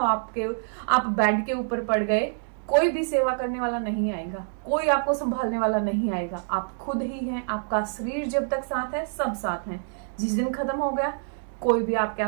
बेड के ऊपर पड़ गए, कोई भी सेवा करने वाला नहीं आएगा, कोई आपको संभालने वाला नहीं आएगा। आप खुद ही हैं। आपका शरीर जब तक साथ है, सब साथ हैं। जिस दिन खत्म हो गया, कोई भी आपके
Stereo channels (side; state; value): left; silent; digital silence